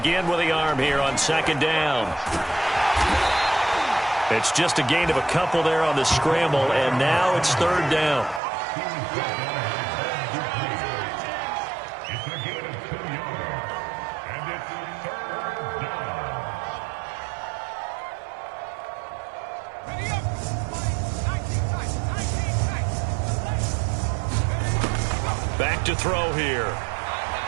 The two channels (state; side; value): drops out; left; at 8.4 s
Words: with the arm here on second down. It's just a gain of a couple there on the scramble, and now it's third down. Back to throw here.